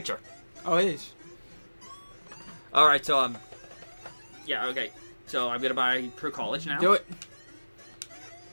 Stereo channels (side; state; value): both; inverted; correlation -1.00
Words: Oh, it is. Alright, so, yeah, okay. So I'm gonna buy per college now. Do it.